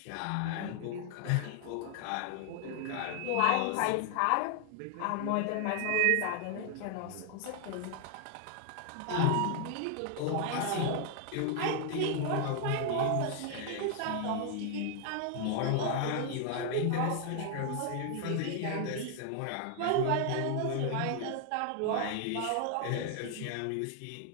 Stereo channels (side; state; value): both; different; correlation 0.00